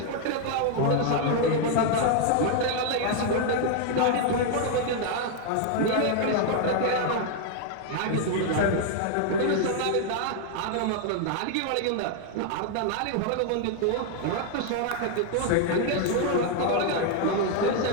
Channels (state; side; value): different; both; correlation 0.00